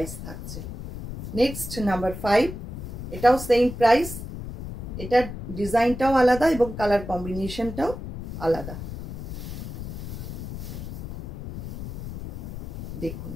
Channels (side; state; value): left; noise; rumble, 9 dB below the sound